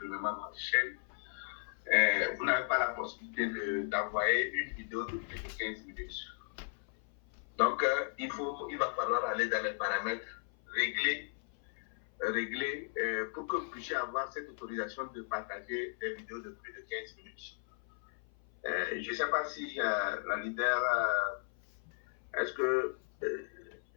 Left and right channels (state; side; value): silent; right; 54 dB below the other